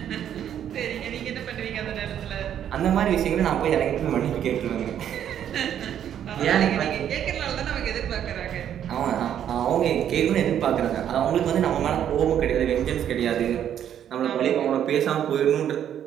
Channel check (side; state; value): left; quieter; 9.9 dB